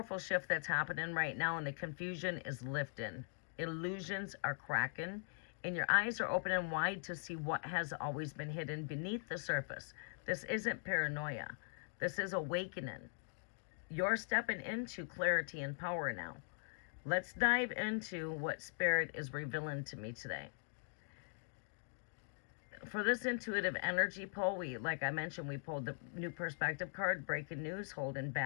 shift that's happening right now, and the confusion is lifting. Illusions are cracking, and your eyes are opening wide to see what has always been hidden beneath the surface. This isn't paranoia. This is awakening. You're stepping into clarity and power now. Let's dive into what Spirit is revealing to me today. For this intuitive energy pull, like I mentioned, we pulled the new perspective card, breaking news, holding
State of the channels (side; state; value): right; silent; digital silence